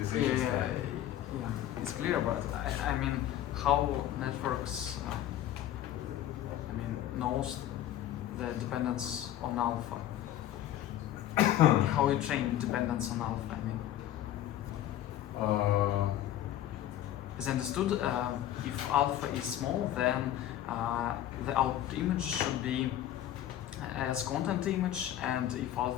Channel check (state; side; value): quieter; right; 12.3 dB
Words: Yeah, style. yeah, it's clear, but I mean, how networks, knows the dependence on alpha? How you train dependence on alpha? As understood, if alpha is small, then the output image should be as content image, and if